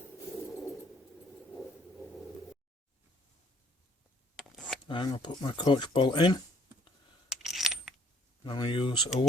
I'm going to put my coach bolt in. I'm going to use a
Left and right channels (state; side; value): normal; both; correlation 0.62